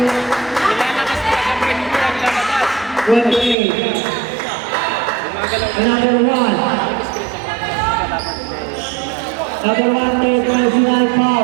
28. Number 1. Number 1, third personal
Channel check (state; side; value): drops out; left; at 3.6 s